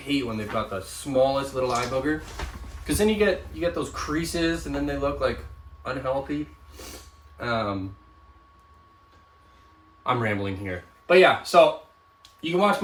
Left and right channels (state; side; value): identical; both; correlation 1.00